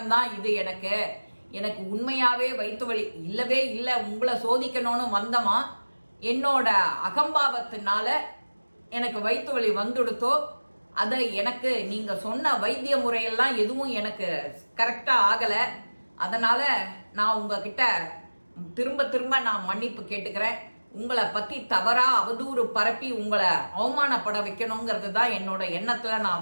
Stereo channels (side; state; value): both; inverted; correlation -1.00